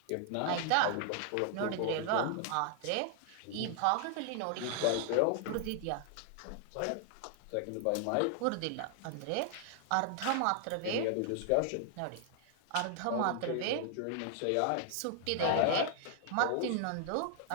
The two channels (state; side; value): different; both; correlation 0.00